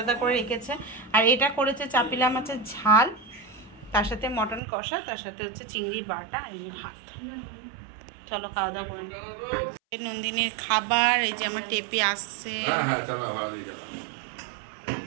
করে রেখেছে। আর এটা করেছে চাপিলা মাছের ঝাল, তার সাথে মটন কষা, তার সাথে হচ্ছে চিংড়ি বাটা, আর এই যে ভাত। চলো খাওয়া দাওয়া করে। নন্দিনীর খাবার, এই যে আমার টেপি আসছে।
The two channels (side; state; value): left; drops out; at 4.6 s